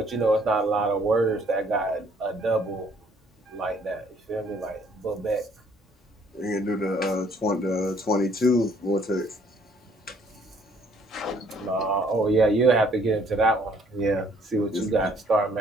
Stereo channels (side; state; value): both; normal; correlation 0.62